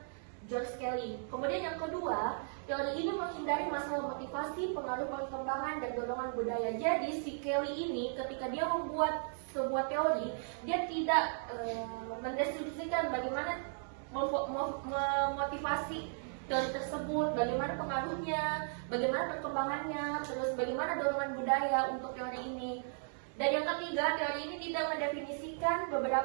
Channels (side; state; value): left; silent; 54 dB below the other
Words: George Kelly. Kemudian yang kedua, teori ini menghindari masalah motivasi, pengaruh perkembangan, dan dorongan budaya. Jadi si Kelly ini ketika dia membuat sebuah teori, dia tidak mendeskripsikan bagaimana memotivasi teori tersebut, bagaimana pengaruhnya, bagaimana perkembangannya, terus bagaimana dorongan budaya untuk teori ini. Dan yang ketiga, teori ini tidak mendefinisikan